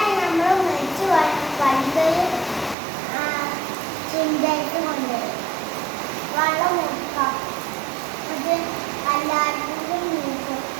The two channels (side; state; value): left; drops out; at 2.8 s